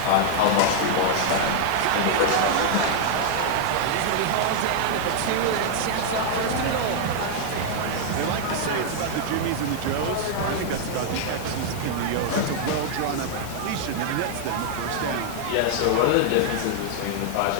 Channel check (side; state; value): both; different; correlation -0.01